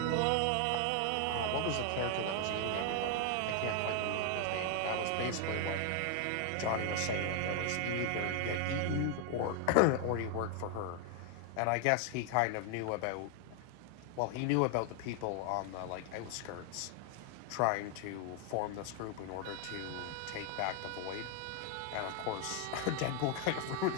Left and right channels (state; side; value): different; both; correlation 0.00